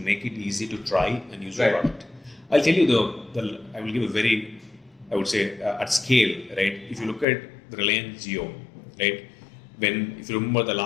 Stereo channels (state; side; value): drops out; right; at 7.2 s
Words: it easy to try and use the product. I'll tell you I will give a very, I would say, at scale, right? If you look at the Reliance Jio, right? If you remember the